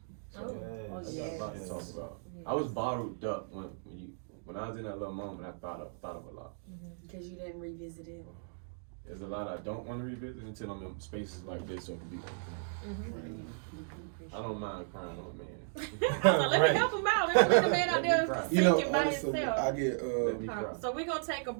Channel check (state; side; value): silent; left; digital silence